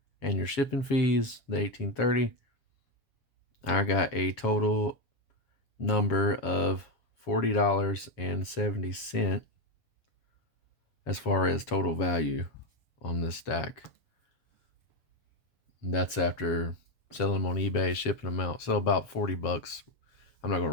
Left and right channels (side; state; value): right; late; 7.3 ms